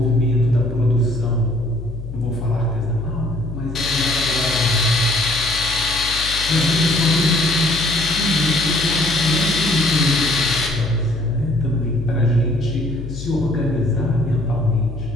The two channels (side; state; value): left; noise; hum, 10 dB below the sound